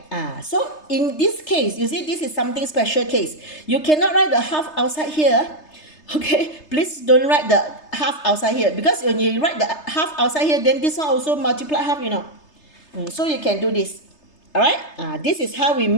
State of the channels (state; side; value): late; right; 3.3 ms